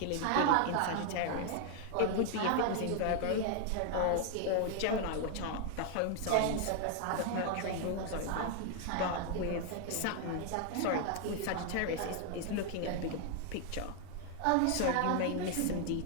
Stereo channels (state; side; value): different; both; correlation 0.00